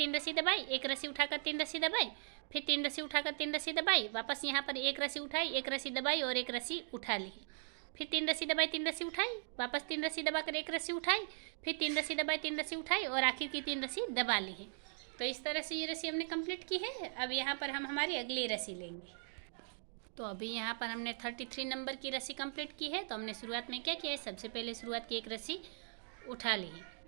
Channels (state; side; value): silent; left; digital silence